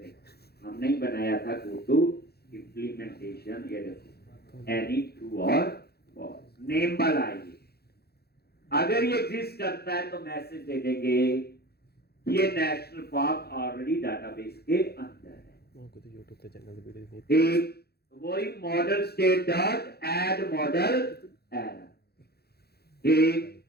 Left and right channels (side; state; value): right; late; 0.46 ms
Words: हमने ही बनाया था गो टू इम्प्लीमेंटेशन, ये देखो एनी ट्रू और फॉल्स, नेम वाला आइए। अगर ये एग्जिस्ट करता है तो मैसेज दे देंगे ये नेशनल पार्क ऑलरेडी डाटाबेस के अंदर है। यूट्यूब पे चैनल वीडियो ठीक, वही model state dot add model error. ठीक,